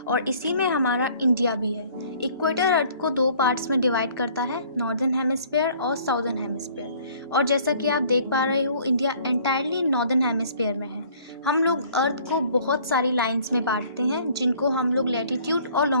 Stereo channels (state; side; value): inverted; both; correlation -0.55